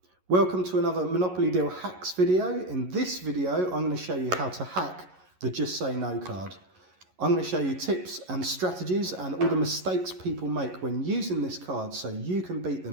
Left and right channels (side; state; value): left; late; 11 ms